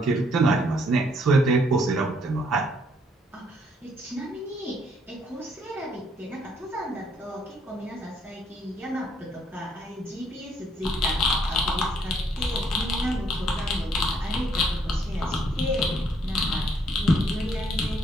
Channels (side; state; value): both; normal; correlation 0.68